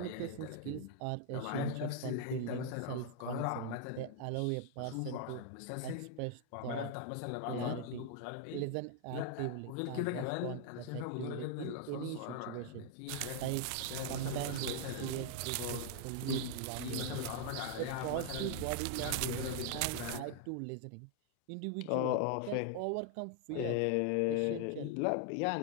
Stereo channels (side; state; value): both; different; correlation 0.00